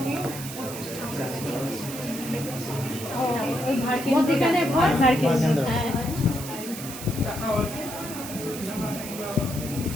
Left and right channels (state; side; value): noise; right; hiss, 10 dB below the sound